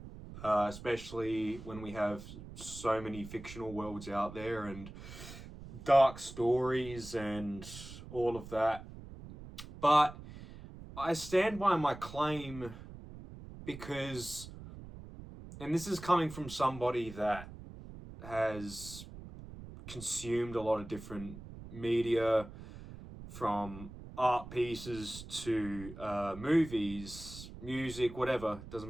especially when we have so many fictional worlds out there and dark stories and all of that. But I stand by my claim because, and this is coming from somebody that has consumed a lot of different media, from art pieces to movies, music, whatever, doesn't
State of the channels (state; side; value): noise; right; rumble, 14 dB below the sound